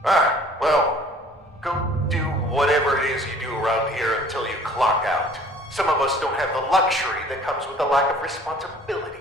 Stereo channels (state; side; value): normal; both; correlation 0.52